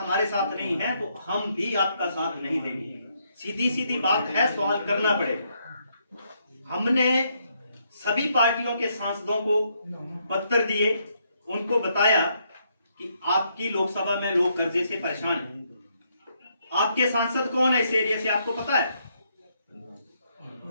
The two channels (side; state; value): both; inverted; correlation -0.75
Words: साथ नहीं हैं तो हम भी आपका साथ नहीं देंगे। सीधी सीधी बात है, सवाल करना पड़ेगा। हमने सभी पार्टियों के सांसदों को पत्र दिए, उनको बताया कि आपकी लोकसभा में लोग कर्जे से परेशान हैं। आपके सांसद कौन है इस एरिया से, आपको पता है?